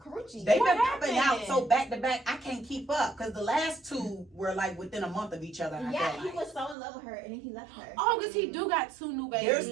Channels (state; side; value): drops out; left; at 6.8 s